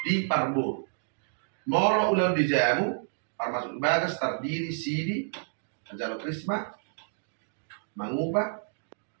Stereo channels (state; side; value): silent; left; digital silence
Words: di parbo. Molo ulau di jamu, termasuk bagas terdiri sidi, ajalo krisma, mangubah,